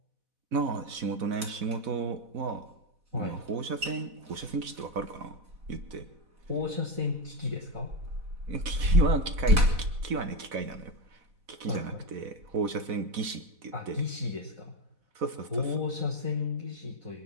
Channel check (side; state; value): left; late; 4.1 ms